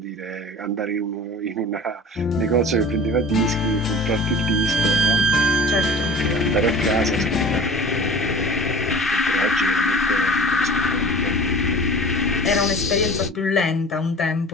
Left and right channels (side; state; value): both; normal; correlation 0.40